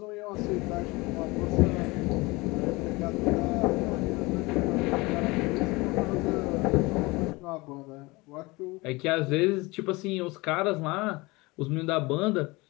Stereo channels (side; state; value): right; quieter; 23.5 dB